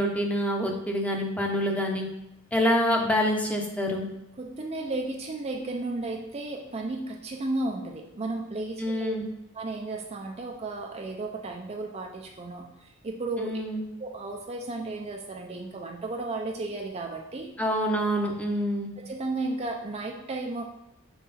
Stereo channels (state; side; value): normal; both; correlation 0.52